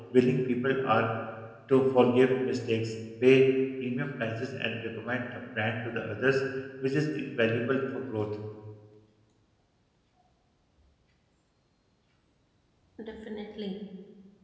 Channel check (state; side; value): identical; both; correlation 1.00